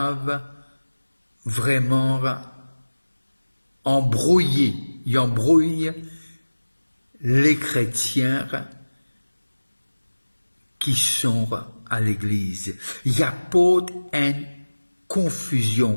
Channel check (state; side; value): inverted; both; correlation -1.00